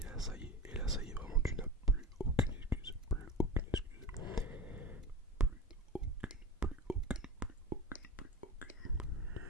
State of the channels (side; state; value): both; normal; correlation 0.30